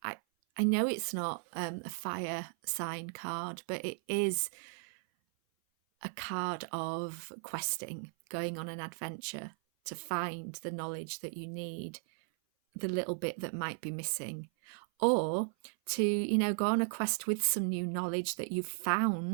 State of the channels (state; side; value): silent; left; 54 dB below the other